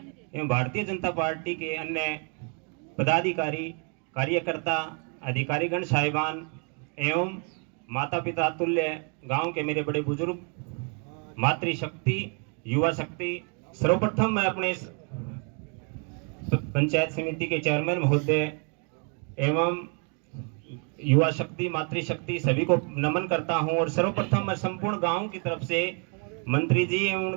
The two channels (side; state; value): left; quieter; 38.7 dB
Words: एवं भारतीय जनता पार्टी के अन्य पदाधिकारी, कार्यकर्ता, अधिकारीगण साहिबान एवं माता पिता तुल्य गांव के मेरे बड़े बुजुर्ग, मातृशक्ति, युवा शक्ति, सर्वप्रथम मैं अपने पंचायत समिति के चेयरमैन महोदय एवं युवा शक्ति, मातृशक्ति सभी को नमन करता हूं। और सर्वप्रथम मैं संपूर्ण गांव की तरफ से मंत्री जी एवं